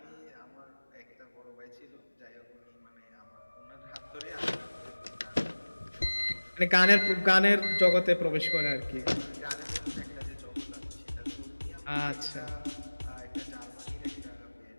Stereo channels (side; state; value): both; inverted; correlation -1.00